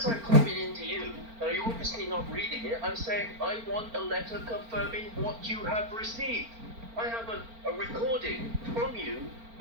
I copied into you, and you're obviously not reading it, I'm saying I want a letter confirming what you have received. I have a recording from you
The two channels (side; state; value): left; late; 4.4 ms